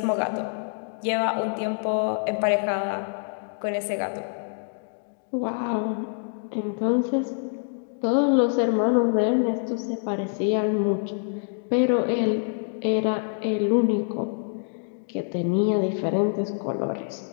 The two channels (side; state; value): right; silent; digital silence